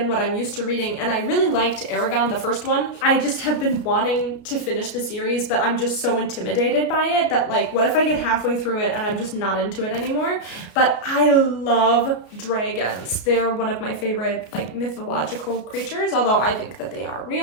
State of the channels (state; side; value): late; right; 33 ms